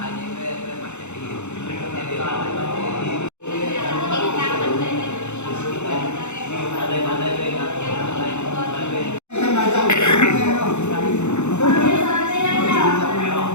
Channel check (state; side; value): late; right; 0.82 ms